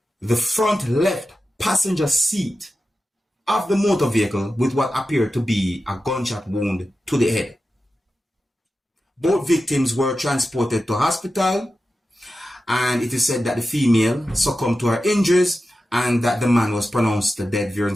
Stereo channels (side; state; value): both; normal; correlation 0.92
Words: the front left passenger seat of the motor vehicle with what appeared to be a gunshot wound to the head. Both victims were transported to hospital, and it is said that the female succumbed to her injuries and that the man was pronounced dead, viewers